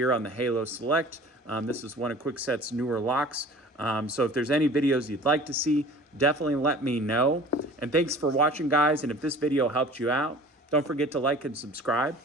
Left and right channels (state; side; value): normal; both; correlation 0.45